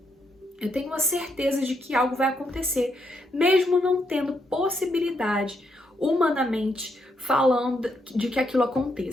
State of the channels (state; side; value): normal; both; correlation 0.77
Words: Eu tenho a certeza de que algo vai acontecer, mesmo não tendo possibilidade, humanamente falando, de que aquilo